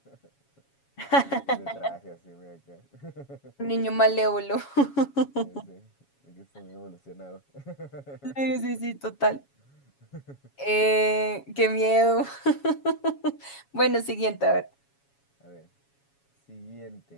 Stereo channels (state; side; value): late; right; 7.2 ms